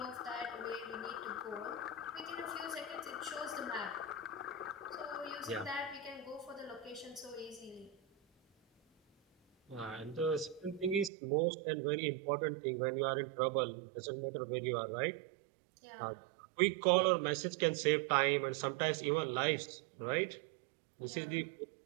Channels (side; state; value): left; drops out; at 11.1 s